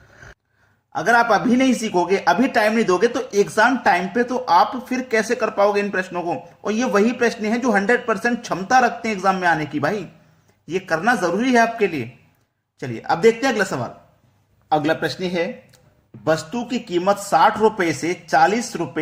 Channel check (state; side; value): identical; both; correlation 1.00